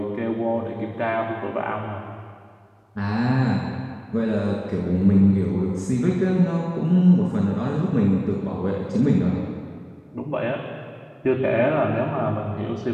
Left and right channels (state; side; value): identical; both; correlation 1.00